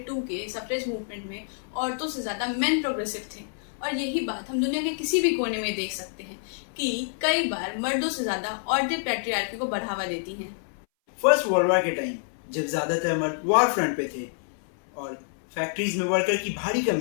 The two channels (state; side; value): silent; right; 59 dB below the other